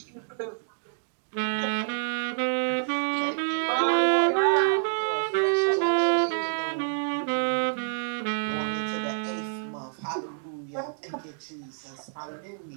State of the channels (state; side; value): silent; left; digital silence